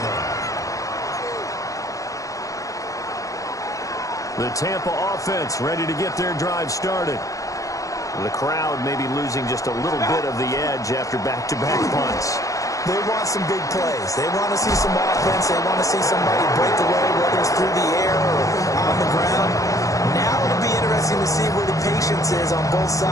line. The Tampa offense ready to get their drive started. The crowd may be losing just a little bit of the edge after back-to-back punts. They want some big plays. They want to see some offense. They want to see somebody break away, whether it's through the air or on the ground. Now it'll be interesting to see where the patience is on both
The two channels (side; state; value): right; late; 0.16 ms